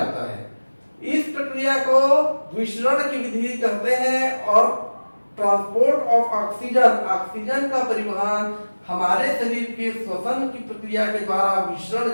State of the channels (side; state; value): both; inverted; correlation -1.00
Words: है। इस प्रक्रिया को विसरण की विधि कहते हैं। और ट्रांसपोर्ट ऑफ ऑक्सीजन, ऑक्सीजन का परिवहन हमारे शरीर के श्वसन की प्रक्रिया के द्वारा विसरण